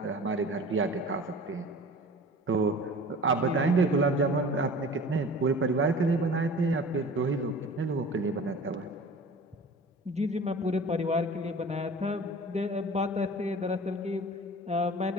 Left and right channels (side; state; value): both; normal; correlation 0.41